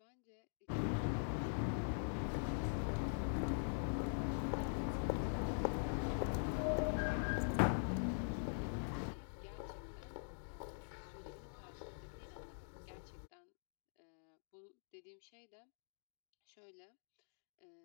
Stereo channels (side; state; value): right; silent; digital silence